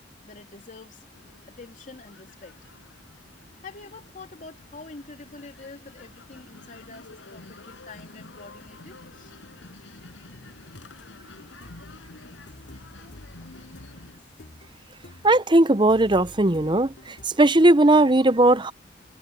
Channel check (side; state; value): both; normal; correlation 0.62